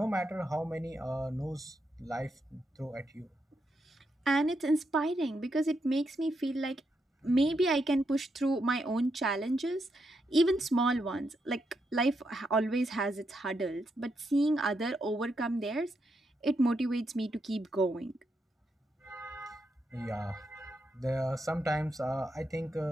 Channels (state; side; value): normal; both; correlation 0.82